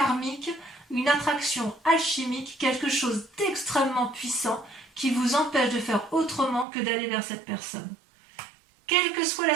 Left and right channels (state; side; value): drops out; left; at 6.7 s